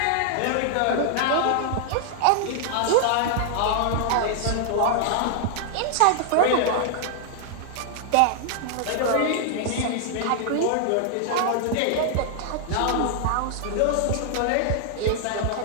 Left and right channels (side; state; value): both; different; correlation -0.01